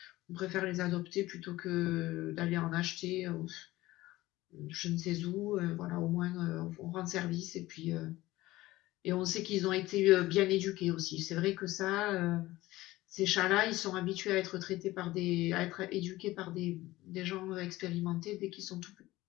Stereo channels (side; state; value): right; quieter; 17.7 dB